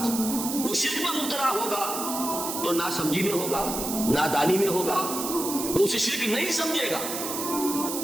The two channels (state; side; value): noise; right; hiss, 5 dB below the sound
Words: وہ شرک میں مبتلا ہوگا تو ناسمجھی میں ہوگا، نادانی میں ہوگا، وہ اسے شرک نہیں سمجھے گا۔